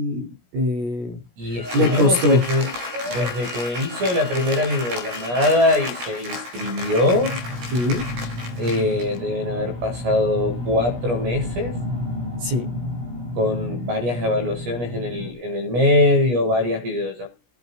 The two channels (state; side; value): late; left; 17 ms